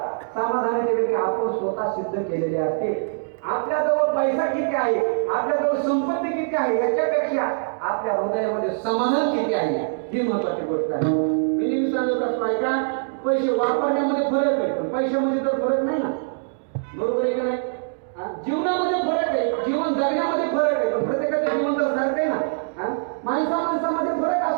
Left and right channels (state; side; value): silent; left; digital silence